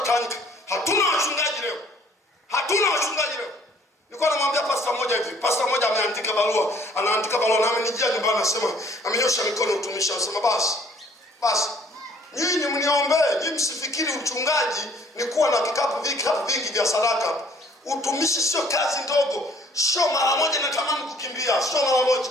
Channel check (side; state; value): both; normal; correlation 0.57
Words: Hatuna wachungaji leo. Nilikuwa namwambia pastor mmoja hivi. Pastor mmoja ameandika barua, na amenijia nyumbani anasema, amenyosha mikono utumishi, anasema basi nyinyi mniombee, nyinyi msifikiri uchungaji ni kuwa na vikapu vingi vya sadaka. Utumishi sio kazi ndogo, sio mara moja natamani kukimbia, sio mara moja.